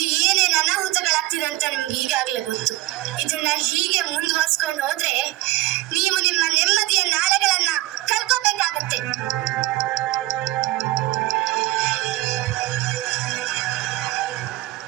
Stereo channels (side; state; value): left; quieter; 18.2 dB